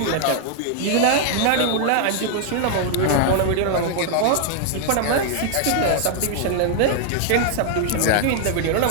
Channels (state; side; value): different; both; correlation 0.00